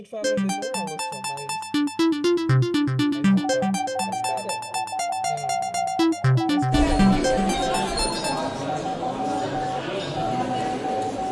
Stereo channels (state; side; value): identical; both; correlation 1.00